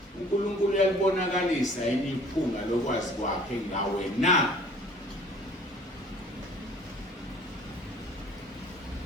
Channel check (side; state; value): both; normal; correlation 0.51